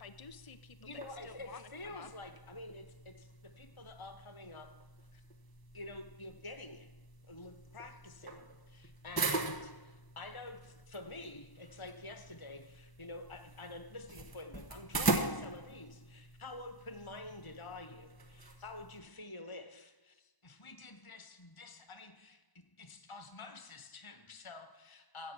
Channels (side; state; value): right; late; 1.0 ms